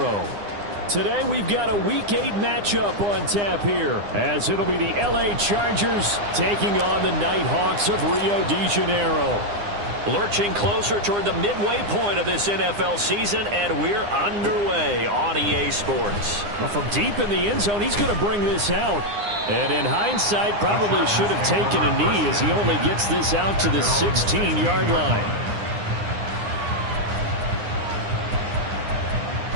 Today we've got a Week 8 matchup on tap here, as it'll be the LA Chargers taking on the Nighthawks of Rio de Janeiro. Lurching closer toward the midway point of this NFL season, and we're underway on EA Sports. Well, from deep in the end zone, he's going to bring this out. And in hindsight, probably should have taken a knee, as he only gets this out to the 16-yard line.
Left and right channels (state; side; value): late; left; 9.8 ms